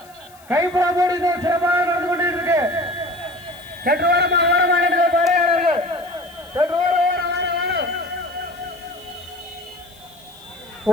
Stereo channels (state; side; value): noise; left; hiss, 26 dB below the sound